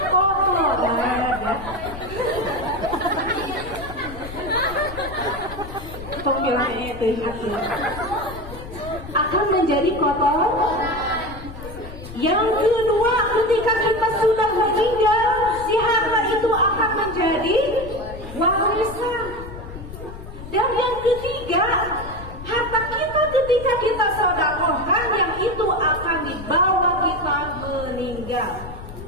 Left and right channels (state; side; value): noise; left; rumble, 12 dB below the sound